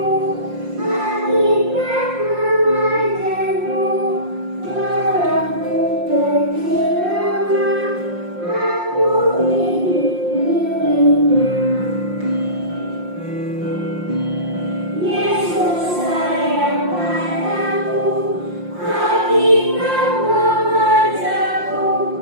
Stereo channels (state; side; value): late; left; 5.6 ms